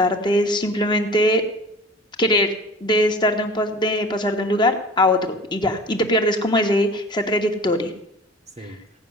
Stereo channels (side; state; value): both; normal; correlation 0.41